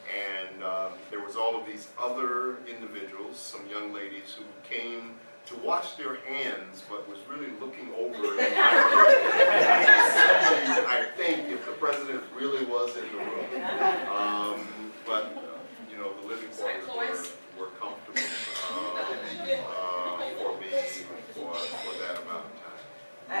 and there was all of these other individuals, some young ladies who came to wash their hands, but was really looking over in my room. I think if the president really was in the room. But you know, the living quarters were comfortable for me for that amount of time. I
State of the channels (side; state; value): both; inverted; correlation -1.00